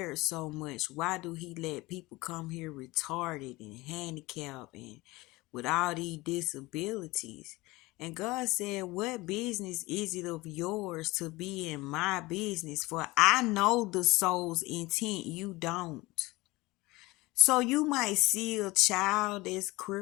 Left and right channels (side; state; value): right; quieter; 21.2 dB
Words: so much, why do he let people come here retarded and handicapped and with all these disabilities? And God said, what business is it of yours to be in my business? For I know the soul's intent, you don't. So you might see a child that's